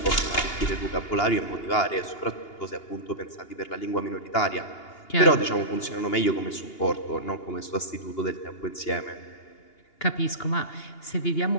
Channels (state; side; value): late; right; 2.8 ms